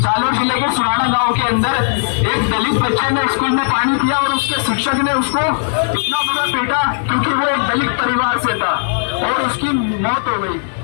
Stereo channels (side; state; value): right; silent; 64 dB below the other